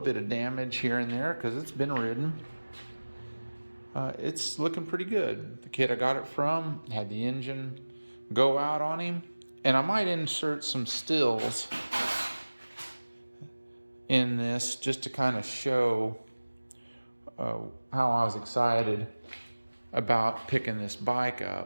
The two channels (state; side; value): inverted; both; correlation -1.00